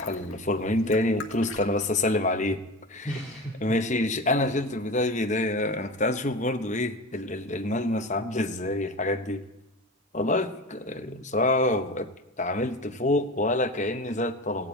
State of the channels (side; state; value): both; normal; correlation 0.30